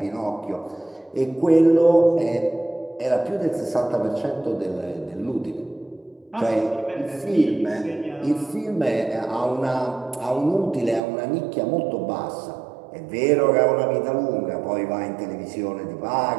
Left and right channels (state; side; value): drops out; left; at 11.0 s